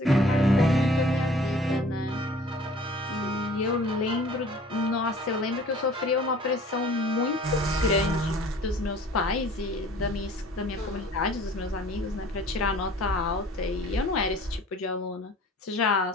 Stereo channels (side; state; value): both; normal; correlation 0.50